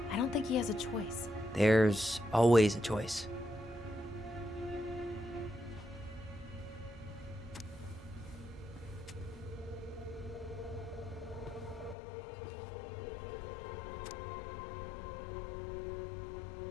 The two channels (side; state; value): right; drops out; at 12.0 s